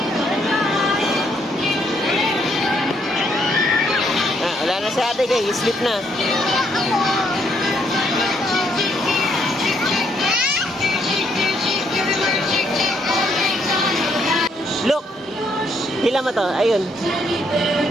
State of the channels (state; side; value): normal; both; correlation 0.71